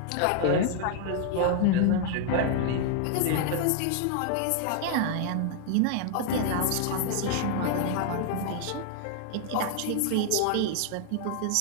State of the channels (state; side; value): different; both; correlation 0.00